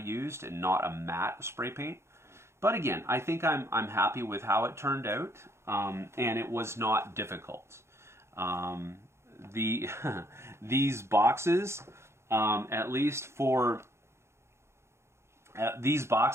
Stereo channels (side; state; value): left; late; 0.13 ms